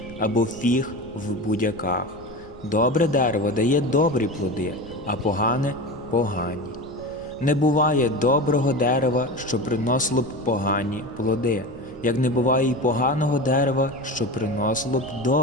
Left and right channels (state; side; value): normal; both; correlation 0.27